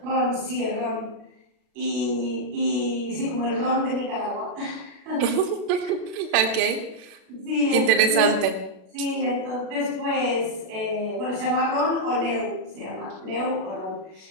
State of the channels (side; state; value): left; late; 36 ms